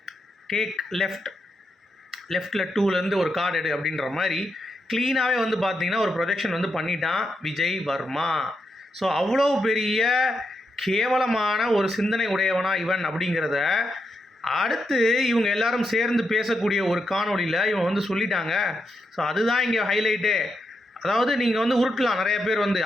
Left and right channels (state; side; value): normal; both; correlation 0.84